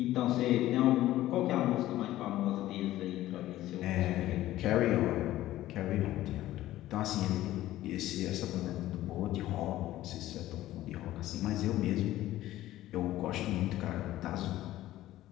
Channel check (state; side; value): quieter; right; 14.9 dB